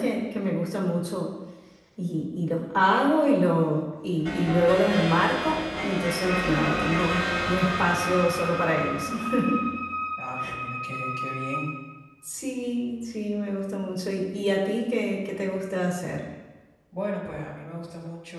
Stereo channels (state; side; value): identical; both; correlation 1.00